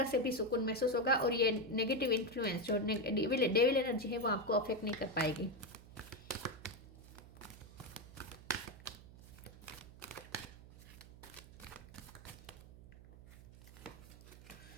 से भी सुकून महसूस होगा और ये नेगेटिव इन्फ्लुएंस जो डेविल एनर्जी है वो आपको अफेक्ट नहीं कर पाएगी।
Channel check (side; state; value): right; noise; hum, 18 dB below the sound